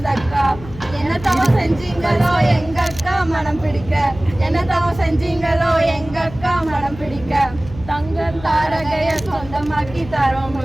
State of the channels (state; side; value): noise; left; hum, 15 dB below the sound